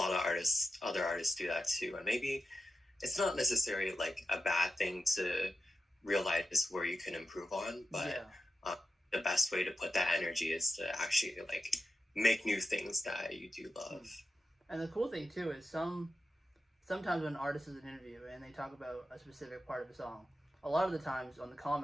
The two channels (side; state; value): both; normal; correlation 0.89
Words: of other artists do that too, and maybe it's not necessarily like a bad thing to realize where you can improve on, but yeah. The best way to put that energy is to actually like make new things that you do love. And the cool thing too is sometimes when an artist is in an interview and they talk about a specific part of a song, a lot of the times on the